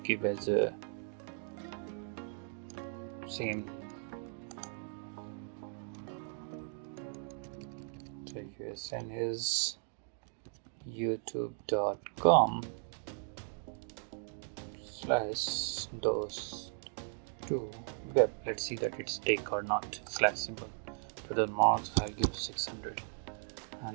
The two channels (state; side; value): silent; left; 53 dB below the other